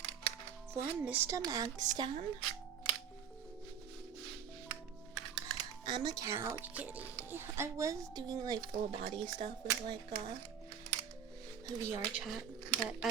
For Mr. Magstan, I'm a couch kitty. I was doing like full body stuff with like VR chat, but I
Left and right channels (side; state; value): left; quieter; 8.1 dB